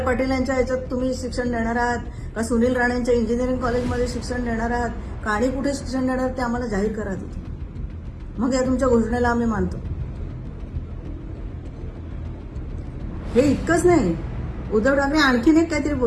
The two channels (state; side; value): identical; both; correlation 1.00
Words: पाटील यांच्या याच्यात तुम्ही शिक्षण देणार आहात का सुनील राणेंच्या इंजिनिअरिंग कॉलेजमध्ये शिक्षण देणार आहात का आणि कुठे शिक्षण देणार ते आम्हाला जाहीर करा तिथे. मग या तुमच्या घोषणेला आम्ही मानतो. हे इतकंच नाही, उद्धव ठाकरे आणखीन एक काहीतरी